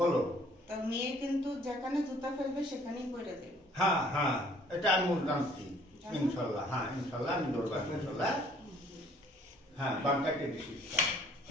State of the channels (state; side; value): normal; both; correlation 0.59